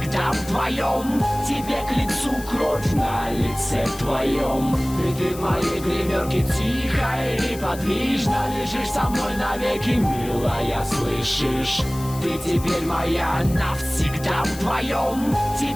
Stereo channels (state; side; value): noise; left; hiss, 15 dB below the sound